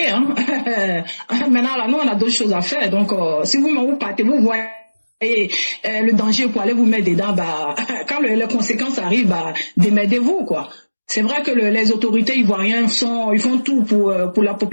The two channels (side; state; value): both; inverted; correlation -1.00